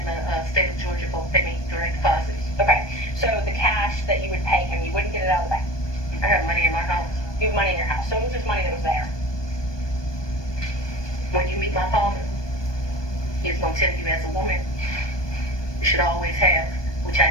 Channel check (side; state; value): right; late; 1.2 ms